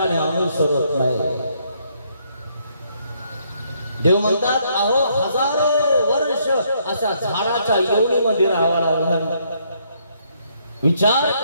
अनुसरत नाही. देव म्हणतात, अहो हजारो वर्ष अशा झाडाच्या योनीमध्ये राहावं लागलं. विचार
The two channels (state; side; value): inverted; both; correlation -0.71